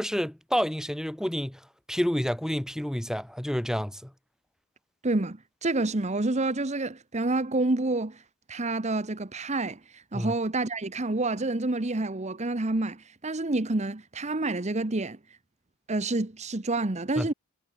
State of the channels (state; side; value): normal; both; correlation 0.61